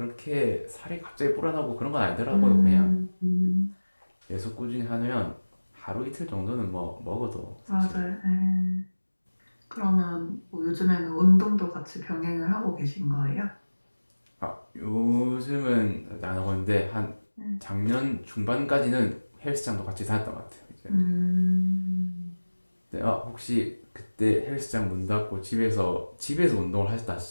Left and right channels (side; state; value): both; inverted; correlation -1.00